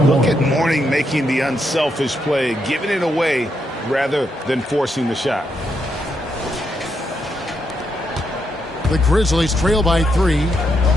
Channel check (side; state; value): both; normal; correlation 0.80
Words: Look at Mourning making the unselfish play, giving it away rather than forcing the shot. The Grizzlies trail by 3.